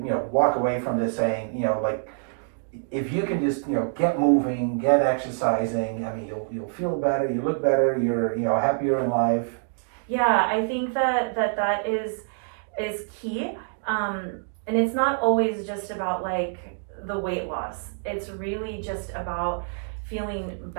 walk away from this saying, like, if you can just get moving, get exercising, I mean, you'll feel better, you look better, you're happier in life. Yeah, I think that is key, and it's not always just about like the weight loss. It's really just about feeling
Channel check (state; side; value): silent; left; digital silence